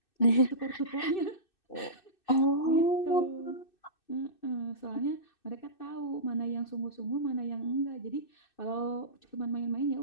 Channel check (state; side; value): late; right; 2.6 ms